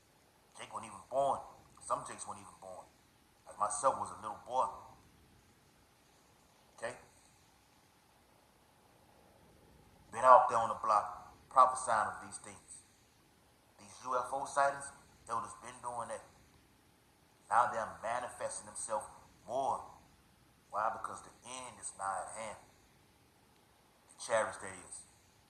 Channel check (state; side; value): identical; both; correlation 1.00